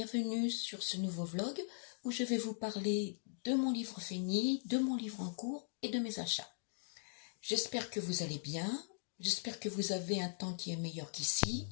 sur ce nouveau vlog où je vais vous parler de mon livre fini, de mon livre en cours et de mes achats. J'espère que vous allez bien, j'espère que vous avez un temps qui est meilleur qu'ici.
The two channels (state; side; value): silent; right; digital silence